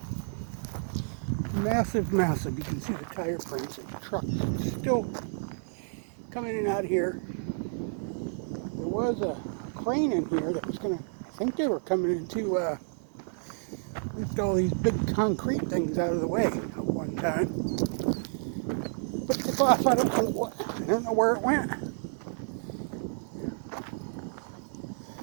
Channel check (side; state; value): left; silent; 58 dB below the other